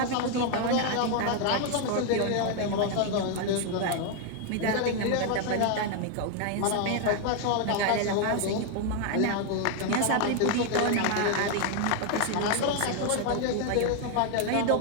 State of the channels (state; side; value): different; both; correlation 0.01